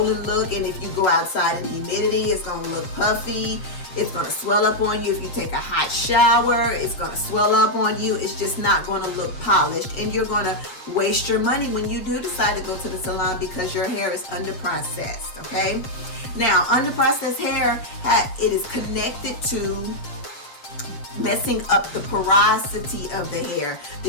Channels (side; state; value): right; late; 7.7 ms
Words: look, and if you go outside in humidity, it's going to look puffy. It's going to swell up on you. If you take a hot shower, it's going to swell up on you. It's just not going to look polished, and you're going to waste your money when you do decide to go to the salon because your hair is under-processed, okay? Now, under-processed hair, it is connected to messing up the porosity of the hair,